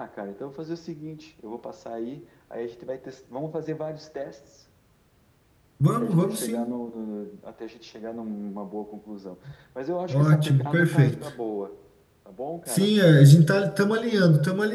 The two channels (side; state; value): both; identical; correlation 1.00